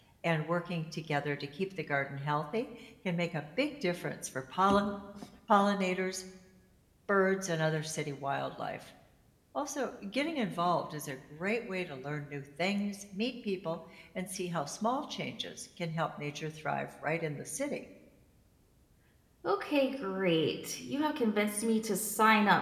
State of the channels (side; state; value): both; identical; correlation 1.00